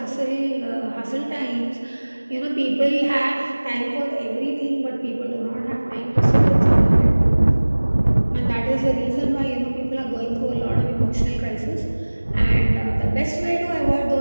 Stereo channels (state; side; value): inverted; both; correlation -1.00